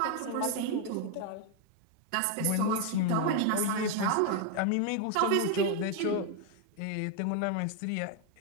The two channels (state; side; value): different; both; correlation 0.01